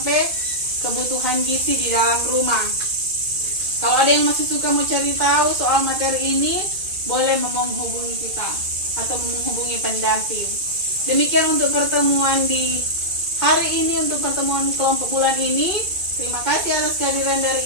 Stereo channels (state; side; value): late; left; 2.5 ms